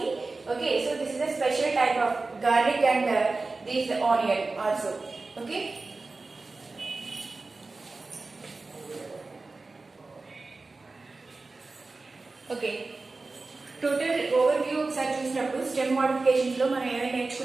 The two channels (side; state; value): left; quieter; 3.6 dB